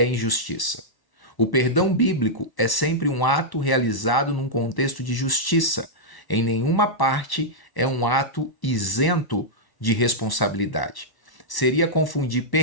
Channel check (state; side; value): late; right; 1.1 ms